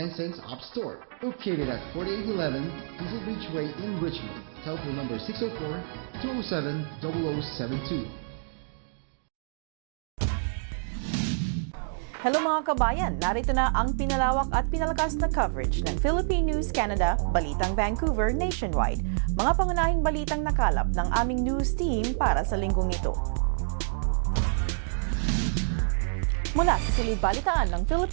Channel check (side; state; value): left; silent; digital silence